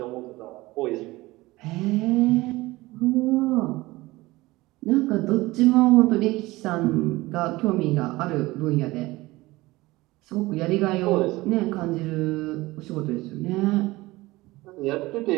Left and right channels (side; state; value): left; quieter; 19.9 dB